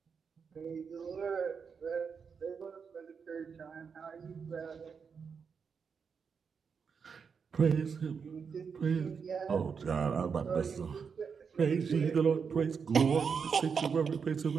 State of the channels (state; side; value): quieter; left; 6.1 dB